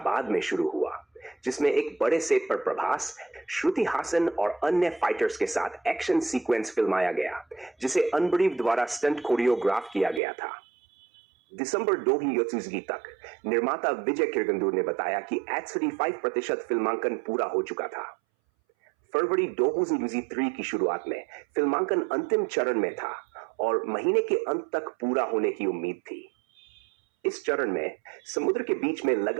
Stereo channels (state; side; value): drops out; left; at 10.2 s